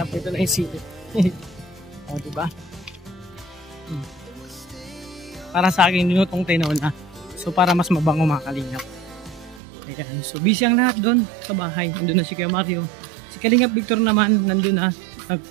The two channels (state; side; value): drops out; left; at 9.6 s